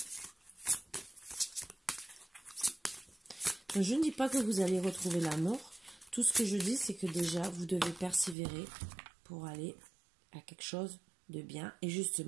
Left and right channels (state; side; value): drops out; left; at 8.3 s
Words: Donc, je ne dis pas que vous allez retrouver l'amour. Tout ce que je dis, c'est que déjà, vous devez persévérer pour aller à quelque chose de bien. Et